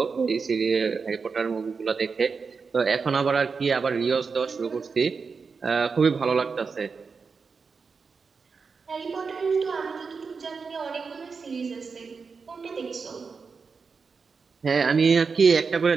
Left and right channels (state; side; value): quieter; left; 5.1 dB